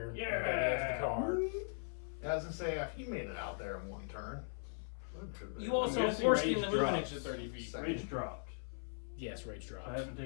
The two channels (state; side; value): silent; right; 52 dB below the other